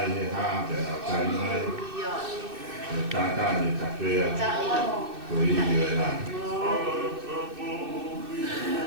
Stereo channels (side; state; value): left; late; 2.6 ms